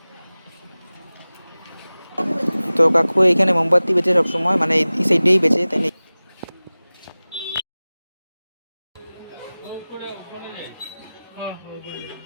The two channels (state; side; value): inverted; both; correlation -0.98